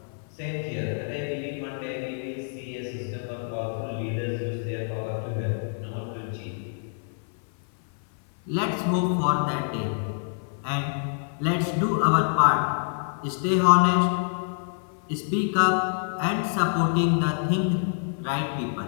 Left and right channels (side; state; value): right; silent; 56 dB below the other